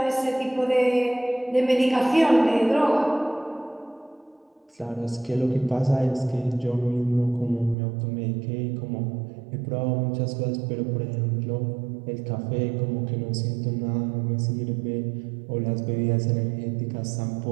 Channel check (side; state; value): left; drops out; at 7.8 s